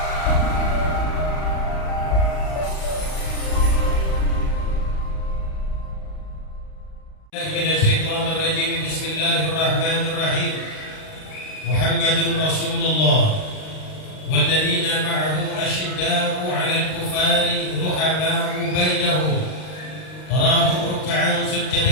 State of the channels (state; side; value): late; right; 38 ms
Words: Minasyaitonirrajim. Bismillahirrahmanirrahim. Muhammadun Rasulullah walladzina ma'ahu asyidda'u 'alal kufari ruhama'u bainahum tarahum ruk'an